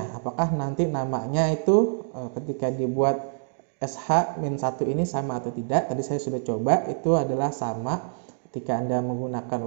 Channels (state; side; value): silent; left; digital silence